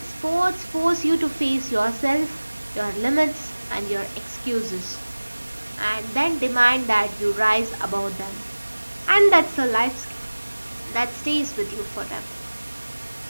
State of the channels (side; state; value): both; inverted; correlation -1.00